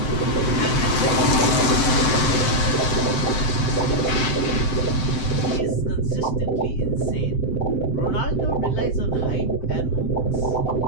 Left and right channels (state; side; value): late; right; 7.7 ms